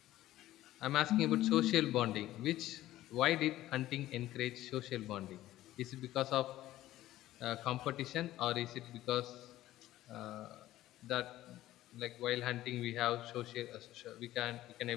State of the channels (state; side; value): quieter; right; 14.8 dB